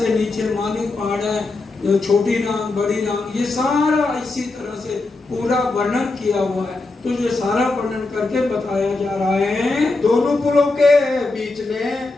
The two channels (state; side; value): quieter; right; 3.4 dB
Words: नीचे मानिक पहाड़ है, छोटी नांग, बड़ी नांग, ये सारा इसी तरह से पूरा वर्णन किया हुआ है। तो ये सारा वर्णन करके बताया जा रहा है। दोनों पुलों के बीच में